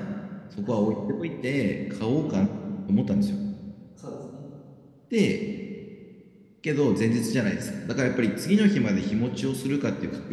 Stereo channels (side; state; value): both; identical; correlation 1.00